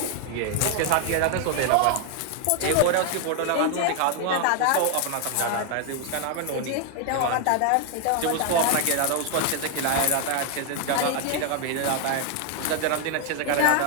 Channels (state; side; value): different; both; correlation 0.00